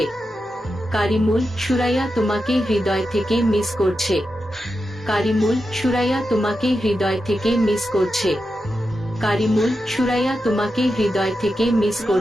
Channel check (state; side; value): normal; both; correlation 0.89